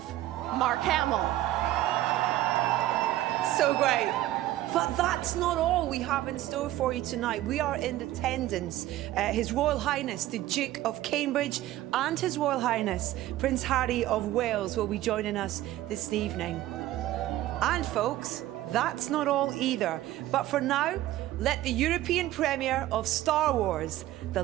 Mark Hamill. So great. But that's not all we have in store for you tonight. We are in attendance. His Royal Highness, the Duke of Cambridge, and His Royal Highness, Prince Harry of Wales, will be joining us this evening. And folks, that's not all either. But for now, let the European premiere of Star Wars, The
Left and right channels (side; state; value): left; quieter; 14.8 dB